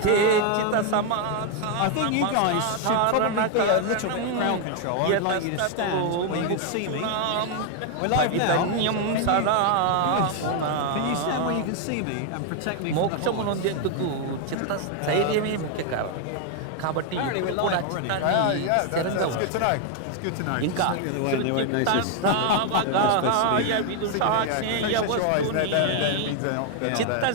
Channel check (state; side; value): different; both; correlation 0.00